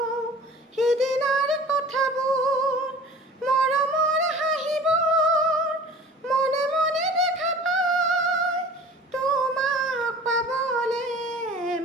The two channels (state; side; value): normal; both; correlation 0.43